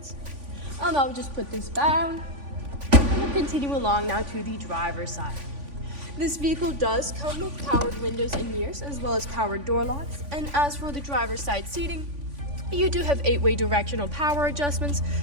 I'll now just put this down, and we'll continue along now to the driver's side. This vehicle does come with powered windows and mirrors, as well as powered door locks, and as for the driver's side seating, you do have 8-way directional power adjustments,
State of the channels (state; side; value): late; left; 3.5 ms